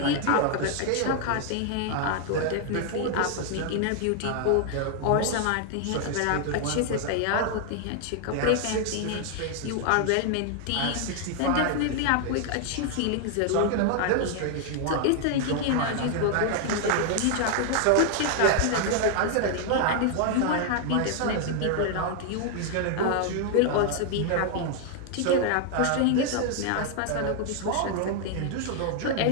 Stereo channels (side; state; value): both; different; correlation 0.00